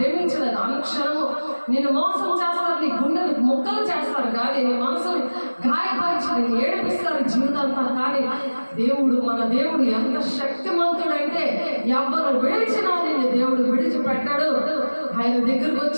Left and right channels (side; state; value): both; inverted; correlation -1.00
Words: అనుక్షణము నిన్ను మోసం చేస్తారు, నీ గుండెని ముక్కలు చేస్తారు, కానీ నీ మనసుని గాయపరిచి ఏడిపిస్తారు జీవితాంతా. కానీ దేవుడు, మన దేవుడు ఎంత శక్తిమంతుడంటే ఎవరు విడిచినా నిన్ను దేవుడు విడిచిపెట్టాడు. ఆయన దగ్గరకు